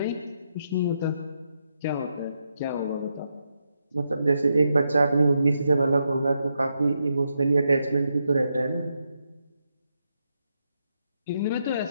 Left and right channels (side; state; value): both; inverted; correlation -0.82